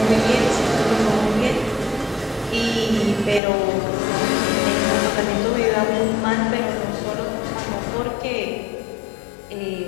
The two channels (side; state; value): right; drops out; at 3.4 s